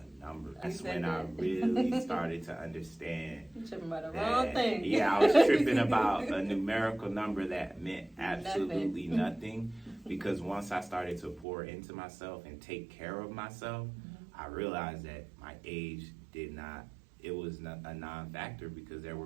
number. That's when I really started to understand. You're tripping about the wrong thing. Yeah, I was tripping about a numerical number that meant absolutely nothing. Because once I started to pour into myself and take care of myself, I realized that my age it was not a non-factor because there were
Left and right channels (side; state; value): left; drops out; at 11.5 s